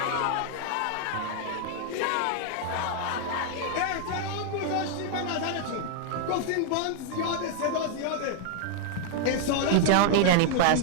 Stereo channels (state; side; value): different; both; correlation 0.00